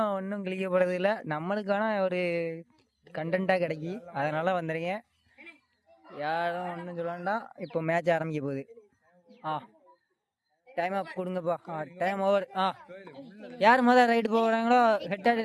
ஒன்றும் கிழிக்கப்படுறது இல்லை, நம்மளுக்கான ஒரு கண்டென்ட்டாக கிடைக்கி. அதனால் வந்துடுங்க, யாரும் ஒன்றும் சொல்ல வேண்டாம். இப்போ மேட்ச் ஆரம்பிக்க போகுது. டைம் அப் கொடுங்கப்பா. Time over. யார் முதல் ரைடு போகிறாங்களோ ஹெட் அண்ட்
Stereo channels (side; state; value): both; identical; correlation 1.00